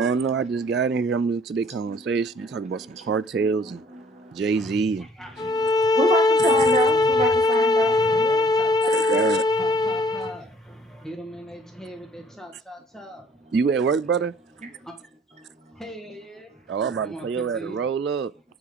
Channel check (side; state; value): both; normal; correlation 0.56